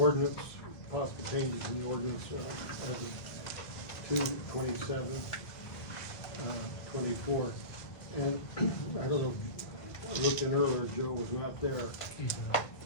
possible changes in the ordinance as of 2/27/24. And I don't know, I looked in earlier, Joe was not there.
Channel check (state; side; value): late; right; 1.9 ms